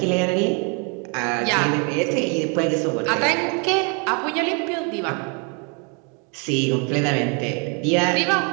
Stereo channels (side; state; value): left; quieter; 35.1 dB